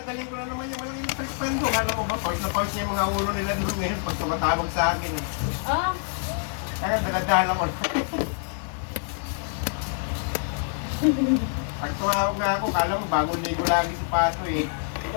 galing ko na naman yung walang electric fan doon. Alam mo ba, pause na pause niya yung mga ulo nila dito ngayon pag tumatawag sa akin eh. Ah? Kaya daladala ko. Pag tumawag na ako, kala mo bagong ligo lagi si Pato eh.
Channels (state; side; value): silent; right; digital silence